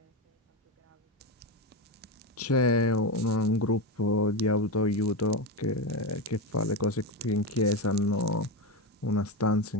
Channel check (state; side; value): normal; both; correlation 0.15